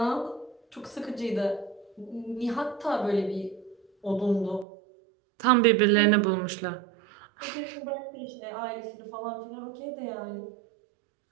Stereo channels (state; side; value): drops out; left; at 4.7 s